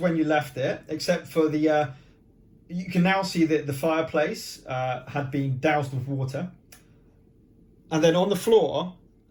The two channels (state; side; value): identical; both; correlation 1.00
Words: you left it, except for you can now see that the fireplace had been doused with water. And then on the floor,